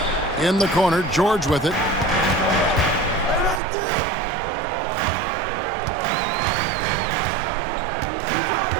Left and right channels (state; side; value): drops out; left; at 3.6 s